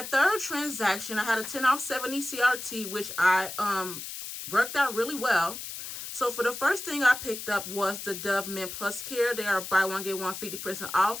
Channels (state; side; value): noise; left; hiss, 8 dB below the sound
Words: third transaction, I had a 10 off 70 CRT, which I worked out really well. So for the first thing I picked up was the Dove Men Plus Care. They are buy 1 get 1 50%